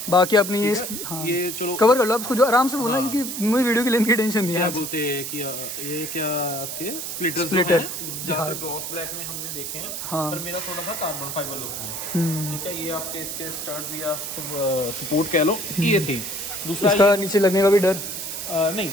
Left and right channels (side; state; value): right; noise; hiss, 6 dB below the sound